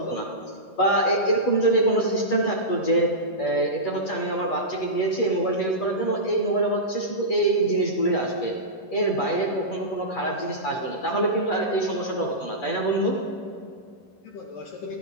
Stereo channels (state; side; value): late; right; 11 ms